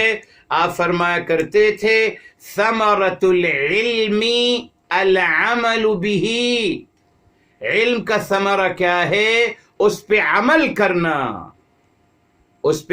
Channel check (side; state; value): both; identical; correlation 1.00